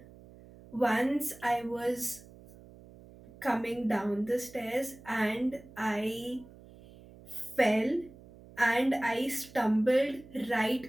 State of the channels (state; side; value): noise; right; hum, 21 dB below the sound